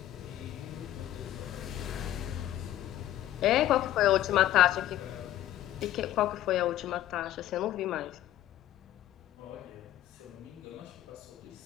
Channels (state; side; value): quieter; right; 13.3 dB